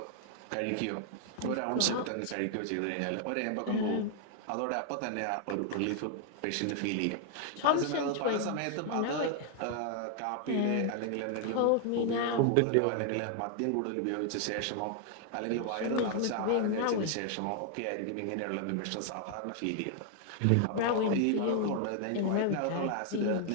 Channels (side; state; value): both; different; correlation 0.00